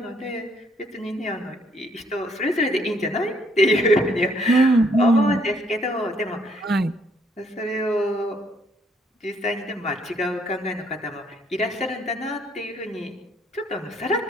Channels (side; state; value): both; normal; correlation 0.68